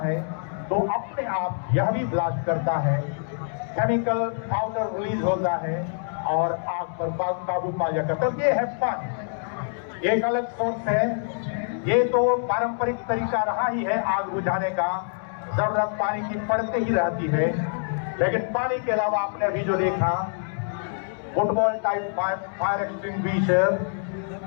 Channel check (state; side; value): silent; right; 61 dB below the other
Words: है तो अपने आप यह भी ब्लास्ट करता है। केमिकल पाउडर रिलीज होता है और आग पर काबू पा जाता है। ये है पानी, एक अलग सोर्स है। ये तो पारंपरिक तरीका रहा ही है आग बुझाने का, जरूरत पानी की पड़ते ही रहती है। लेकिन पानी के अलावा आपने अभी जो देखा फुटबॉल टाइप फायर एक्सटिंग्विशर